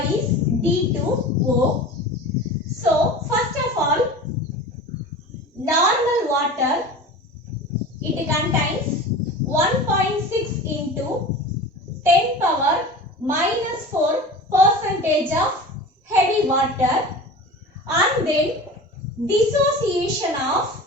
is D2O. So, first of all, normal water, it contains 1.6 into 10 power minus 4 percentage of heavy water, and then dissociation of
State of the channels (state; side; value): normal; both; correlation 0.35